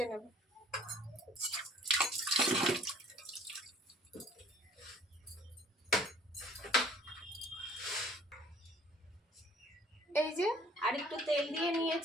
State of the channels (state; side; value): normal; both; correlation 0.53